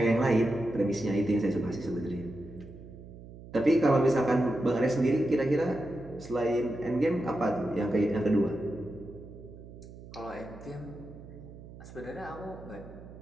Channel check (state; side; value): noise; right; hum, 16 dB below the sound